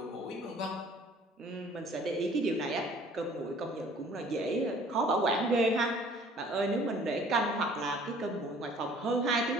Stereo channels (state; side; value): normal; both; correlation 0.53